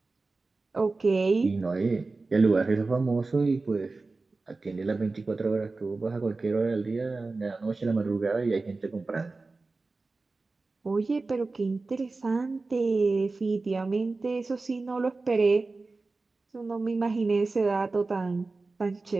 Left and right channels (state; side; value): quieter; left; 3.6 dB